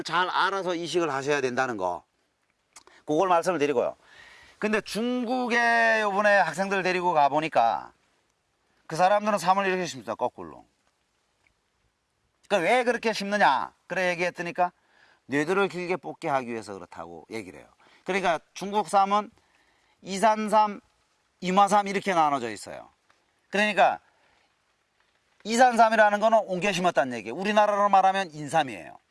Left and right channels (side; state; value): both; identical; correlation 1.00